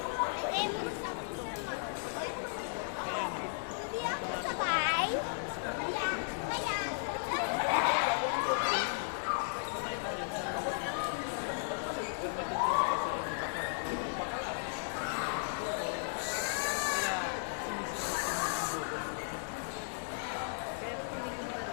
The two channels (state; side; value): silent; right; digital silence